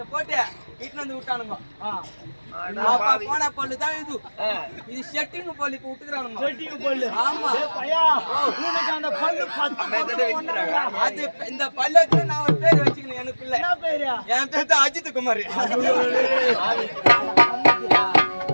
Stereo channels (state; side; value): inverted; both; correlation -1.00